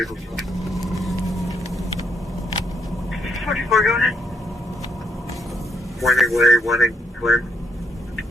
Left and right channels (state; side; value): normal; both; correlation 0.74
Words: 44, go ahead. Winding way, winding Flynn.